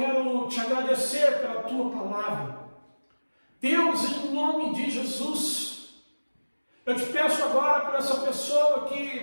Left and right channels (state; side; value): inverted; both; correlation -1.00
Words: te agradecer pela tua palavra. Deus, em nome de Jesus, eu te peço agora por essa pessoa